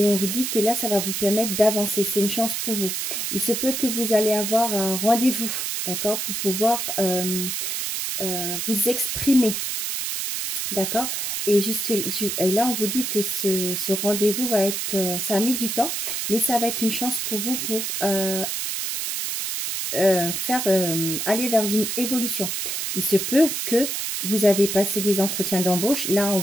on vous dit que là, ça va vous permettre d'avancer. C'est une chance pour vous. Il se peut que vous allez avoir un rendez-vous, d'accord, pour pouvoir vous exprimer, d'accord. Et là, on vous dit que ce rendez-vous va être, ça a mis du temps, mais ça va être une chance pour vous pour aller vers une évolution. Il se peut que vous avez passé des entretiens d'embauche. Là, on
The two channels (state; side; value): noise; right; hiss, 2 dB below the sound